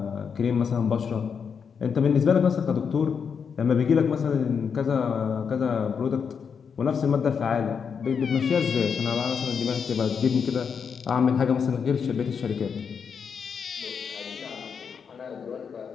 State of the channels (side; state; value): right; quieter; 6.5 dB